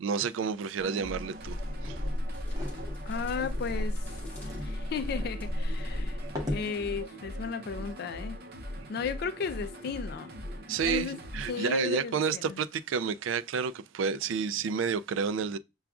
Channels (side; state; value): both; normal; correlation 0.25